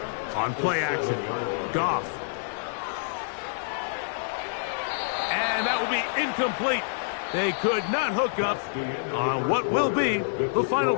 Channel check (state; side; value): silent; right; digital silence